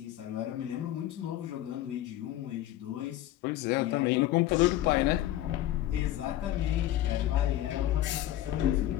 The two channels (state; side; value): quieter; right; 13.8 dB